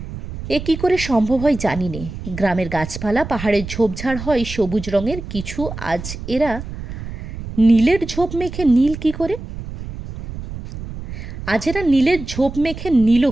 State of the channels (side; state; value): right; noise; rumble, 10 dB below the sound